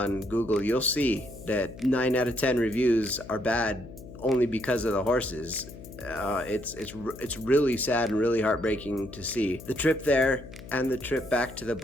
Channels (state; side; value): noise; left; hum, 15 dB below the sound